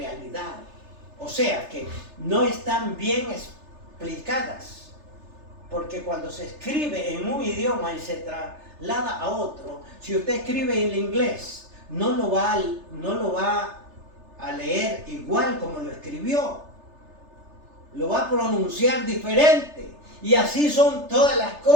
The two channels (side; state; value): left; late; 3.3 ms